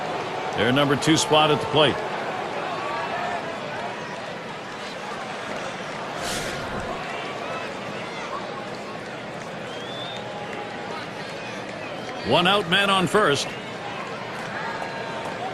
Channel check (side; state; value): both; identical; correlation 1.00